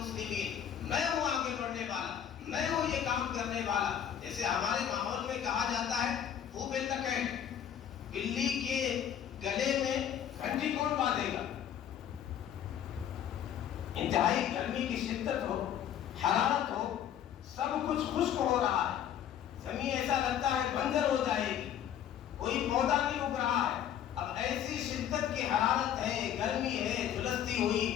میں ہوں آگے بڑھنے والا، میں ہوں یہ کام کرنے والا۔ جیسے ہمارے ماحول میں کہا جاتا ہے خوب تکیٹ، بلی کے گلے میں گھنٹی کون باندھے گا؟ انتہائی گرمی کی شدت ہو، حرارت ہو، سب کچھ خشک ہو رہا ہے، زمین ایسا لگتا ہے بنجر ہو جائے گی، کوئی پودا نہیں اگ رہا ہے، اب ایسی شدت کی حرارت ہے، گرمی ہے، جھلستی ہوئی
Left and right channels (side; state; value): right; quieter; 9.8 dB